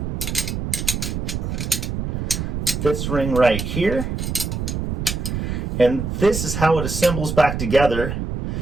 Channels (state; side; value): noise; right; rumble, 2 dB below the sound